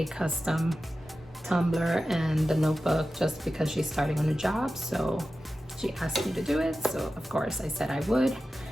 custom tumbler and the notebook just because she's starting a new job. So she asked me to do it, so of course I said I would.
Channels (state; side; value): normal; both; correlation 0.93